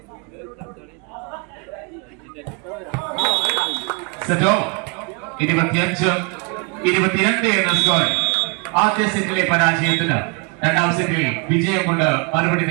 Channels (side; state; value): left; quieter; 31.5 dB